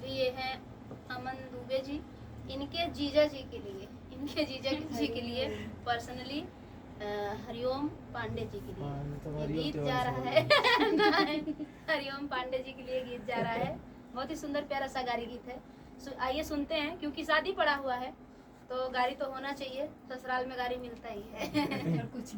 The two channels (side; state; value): both; identical; correlation 1.00